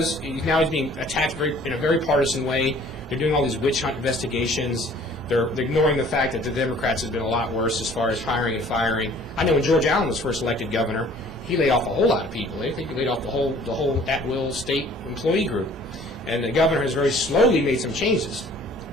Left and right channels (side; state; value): both; normal; correlation 0.53